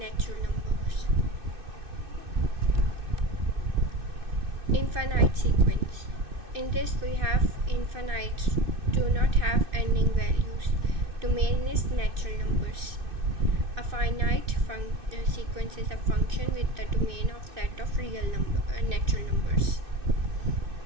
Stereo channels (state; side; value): late; left; 2.6 ms